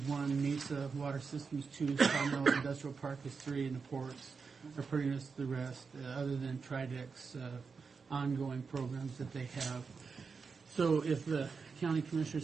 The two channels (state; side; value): quieter; left; 5.1 dB